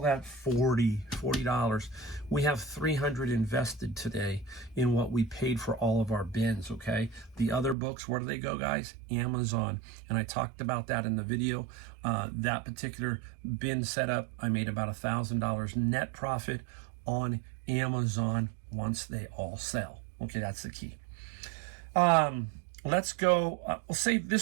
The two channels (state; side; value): drops out; left; at 7.8 s